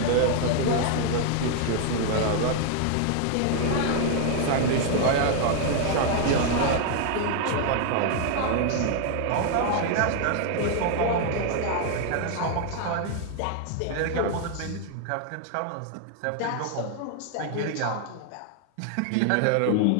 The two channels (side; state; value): both; different; correlation 0.00